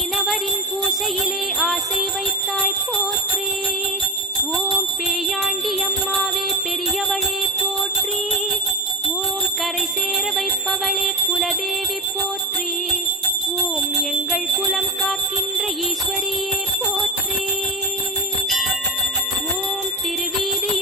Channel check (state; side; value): normal; both; correlation 0.19